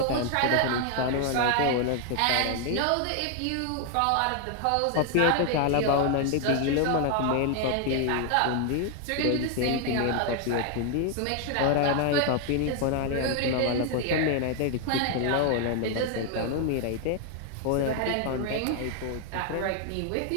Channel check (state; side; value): different; both; correlation 0.00